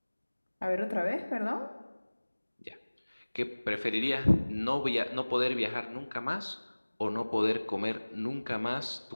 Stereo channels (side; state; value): both; inverted; correlation -1.00